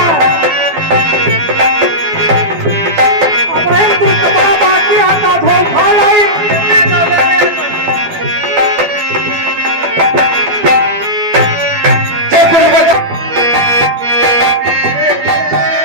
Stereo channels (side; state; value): left; late; 12 ms